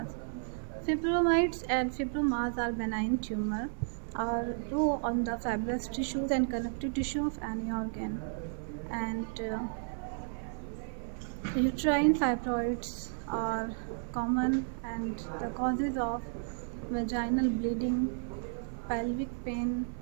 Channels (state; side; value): silent; left; 55 dB below the other